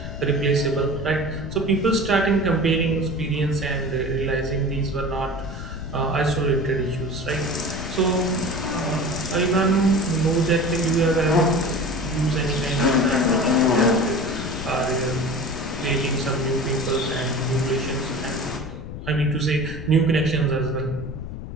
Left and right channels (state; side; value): noise; left; rumble, 9 dB below the sound